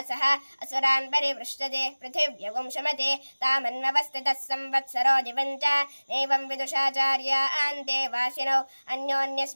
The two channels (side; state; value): both; inverted; correlation -1.00